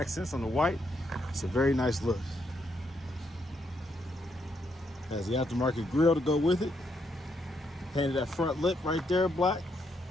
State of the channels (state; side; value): normal; both; correlation 0.77